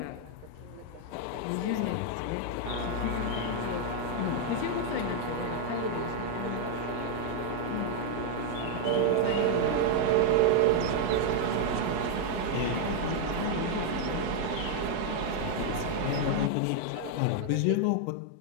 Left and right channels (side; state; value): both; different; correlation 0.00